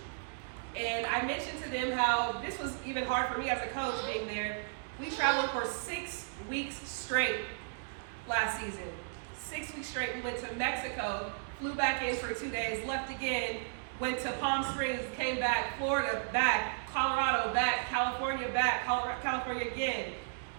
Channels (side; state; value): left; silent; digital silence